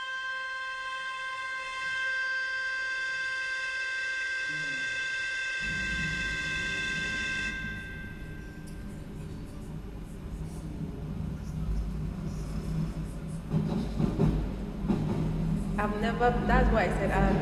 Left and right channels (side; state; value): both; identical; correlation 1.00